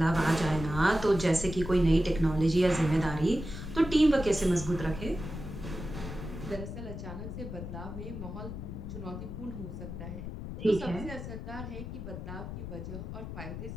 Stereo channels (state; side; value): noise; left; rumble, 8 dB below the sound